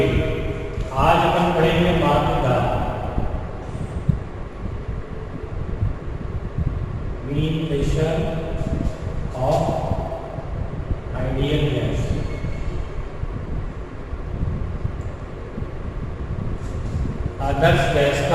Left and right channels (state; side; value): identical; both; correlation 1.00